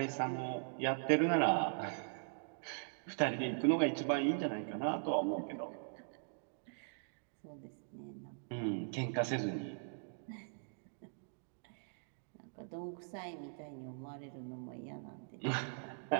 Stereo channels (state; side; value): silent; left; digital silence